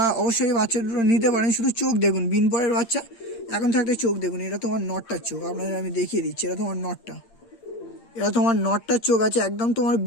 অবশ্যই বাচ্চা দুটো নিতে পারেন। শুধু চোখ দেখুন, বিনপরের বাচ্চা এখন থাকতে চোখ দেখুন। এটা তোমার নটটার চোখ, আপনাদের আমি দেখিয়ে দিচ্ছি। এটা তোমার নটটা, এটা তোমার নটটার চোখ আছে, একদম তোমার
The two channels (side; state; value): right; late; 8.7 ms